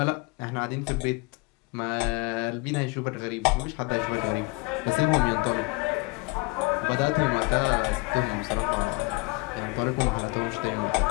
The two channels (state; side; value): quieter; right; 26.3 dB